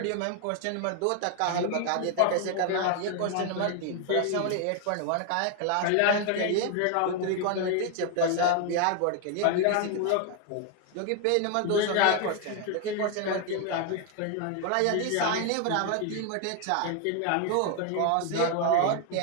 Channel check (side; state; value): both; different; correlation 0.00